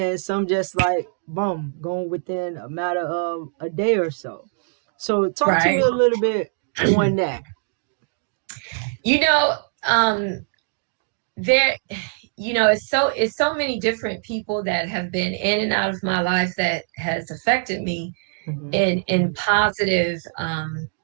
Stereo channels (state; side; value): silent; left; digital silence